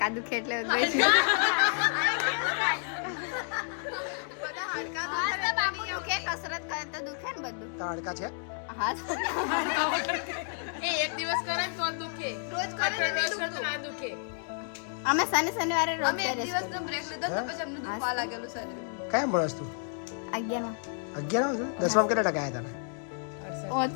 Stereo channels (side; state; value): right; silent; 58 dB below the other